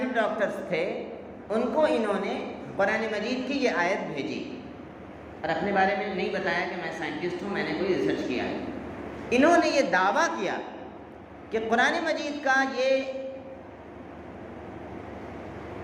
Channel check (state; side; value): identical; both; correlation 1.00